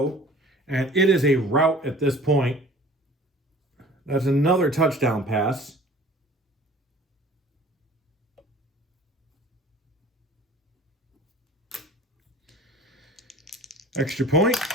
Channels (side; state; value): both; normal; correlation 0.46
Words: And it is a rout at this point. That's another touchdown pass. Extra point